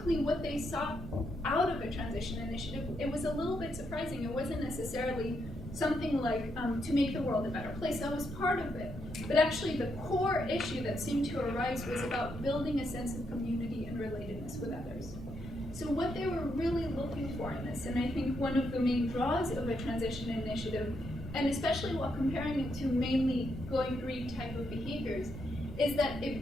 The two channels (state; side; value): normal; both; correlation 0.79